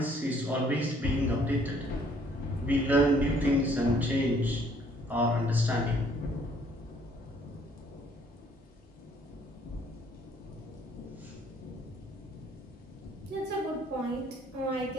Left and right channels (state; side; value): normal; both; correlation 0.62